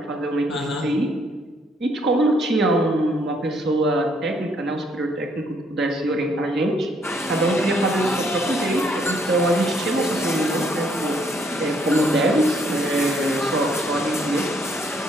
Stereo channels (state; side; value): normal; both; correlation 0.68